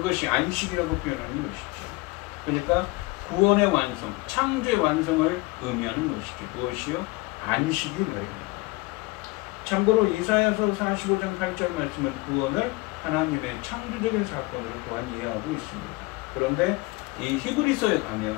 안식이라고 표현하는 것이죠. 그러니까 구원의 완성, 창조의 완성을 의미하는 것이죠. 무엇이요? 안식이 말입니다. 참고로 이사야서 45장 8절 말씀은 구원을 하나님의 창조적인 사건으로 또한 이해하고 있습니다. 그런데 이 히브리서에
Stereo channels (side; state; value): right; quieter; 23.9 dB